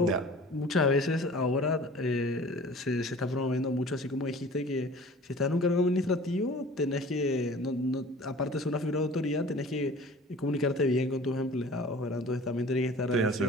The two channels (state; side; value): normal; both; correlation 0.45